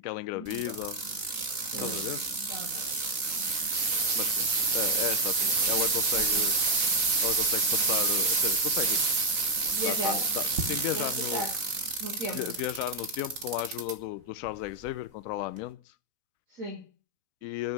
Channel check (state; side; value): late; left; 4.0 ms